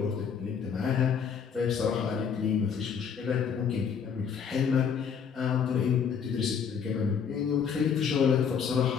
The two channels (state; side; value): quieter; right; 6.9 dB